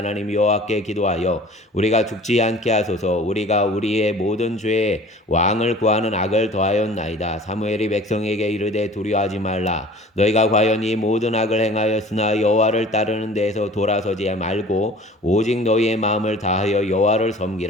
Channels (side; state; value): both; normal; correlation 0.46